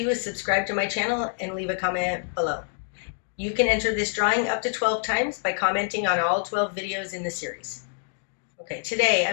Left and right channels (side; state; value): right; silent; digital silence